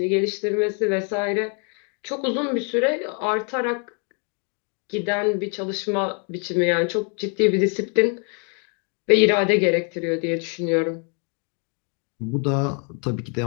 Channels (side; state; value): right; quieter; 38.6 dB